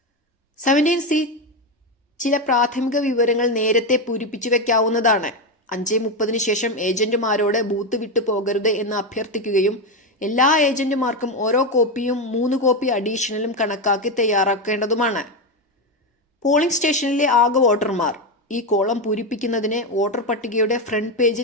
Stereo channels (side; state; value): both; normal; correlation 0.11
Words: 17C ചില പ്രാഥമിക വിവരങ്ങൾ നേരത്തെ പൂരിപ്പിച്ചു വെക്കാവുന്നതാണ്. 5:30 ശേഷം ഏജന്റുമാരോട് ബൂത്ത് വിട്ടു പോകരുത് എന്ന് അഭ്യർത്ഥിക്കുകയും എല്ലാ ഏജന്റുമാർക്കും ഓരോ കോപ്പിയും 3 കോപ്പി അഡീഷണലും കണക്കാക്കി തയ്യാറാക്കേണ്ടതുമാണ്. പോളിംഗ് സ്റ്റേഷനിലെ ആകെ വോട്ടർമാർ ഈ കോളം പൂരിപ്പിക്കുന്നതിന് വോട്ടർ പട്ടികയുടെ ഫ്രണ്ട്